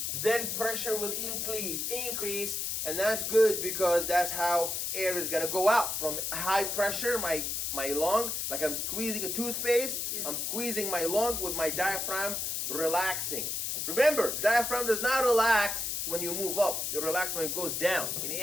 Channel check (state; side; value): noise; left; hiss, 1 dB below the sound